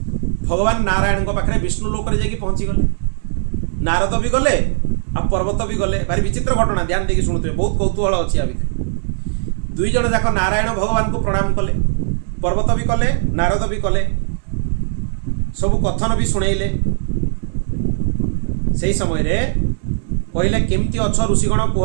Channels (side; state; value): left; silent; digital silence